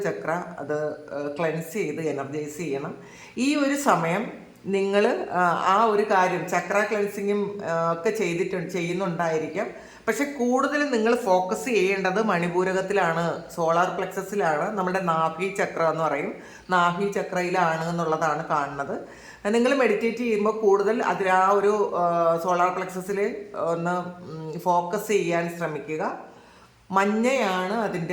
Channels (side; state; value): both; identical; correlation 1.00